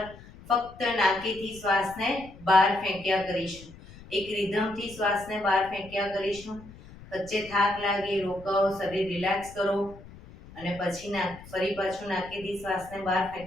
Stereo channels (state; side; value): noise; left; rumble, 19 dB below the sound